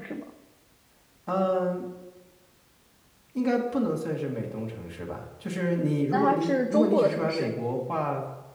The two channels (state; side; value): identical; both; correlation 1.00